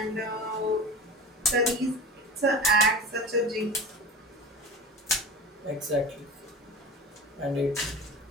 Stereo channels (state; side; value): normal; both; correlation 0.33